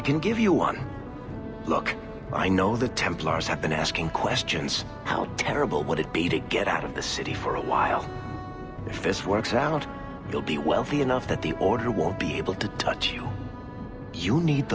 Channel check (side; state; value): both; identical; correlation 1.00